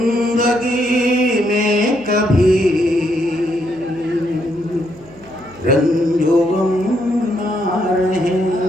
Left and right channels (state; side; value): noise; right; hum, 23 dB below the sound